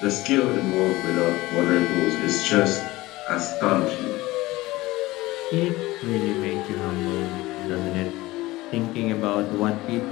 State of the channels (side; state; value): right; quieter; 19.1 dB